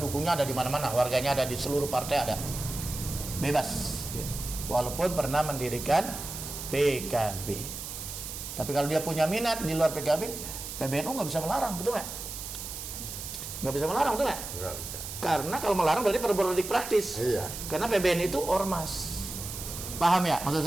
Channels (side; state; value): right; noise; hiss, 8 dB below the sound